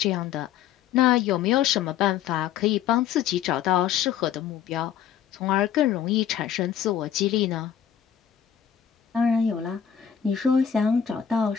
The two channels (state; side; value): quieter; right; 9.1 dB